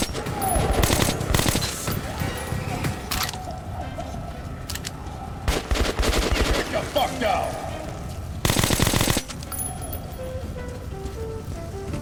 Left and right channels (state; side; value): identical; both; correlation 1.00